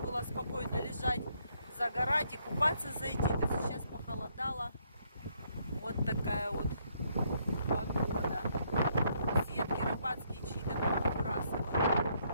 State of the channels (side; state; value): both; inverted; correlation -0.71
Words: спокойно лежать, загорать и купаться зайти. То сейчас похолодало. Вот такая вот погода. Сетки рыбацкие чьи-то